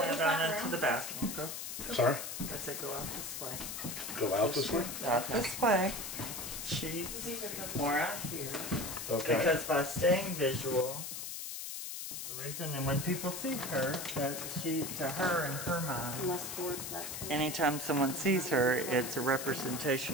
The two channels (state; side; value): noise; left; hiss, 6 dB below the sound